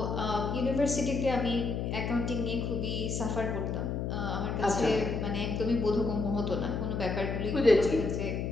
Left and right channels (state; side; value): noise; left; hum, 2 dB below the sound